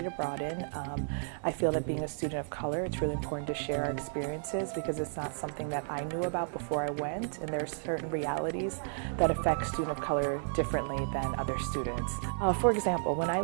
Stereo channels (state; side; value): silent; left; 56 dB below the other